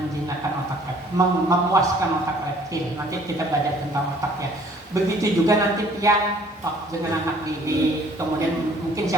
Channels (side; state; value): both; normal; correlation 0.57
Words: memuaskan otak reptil. Nanti kita belajar tentang otak ya. Begitu juga nanti pian dengan anak didik, kemudian mungkin